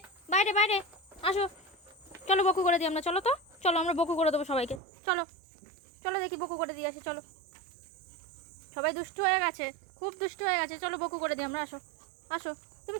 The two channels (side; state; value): left; drops out; at 4.8 s